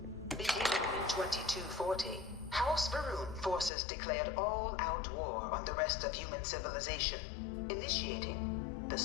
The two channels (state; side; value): drops out; right; at 3.7 s